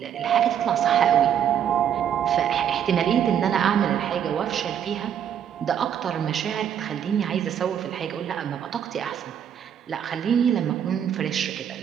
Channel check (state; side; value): quieter; left; 9.1 dB